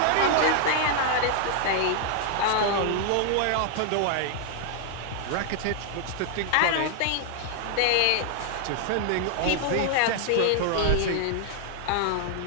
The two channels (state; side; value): different; both; correlation 0.00